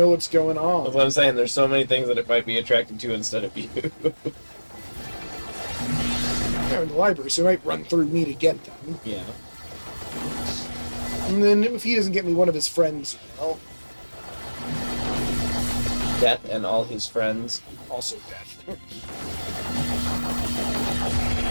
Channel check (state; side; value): inverted; both; correlation -1.00